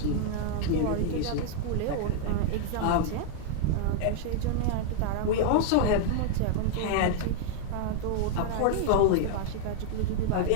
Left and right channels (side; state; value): both; different; correlation 0.00